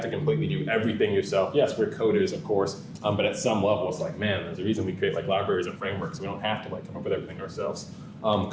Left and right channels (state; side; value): identical; both; correlation 1.00